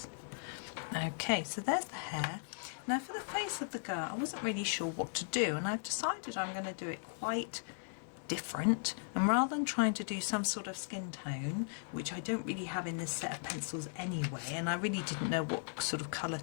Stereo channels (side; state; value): right; silent; digital silence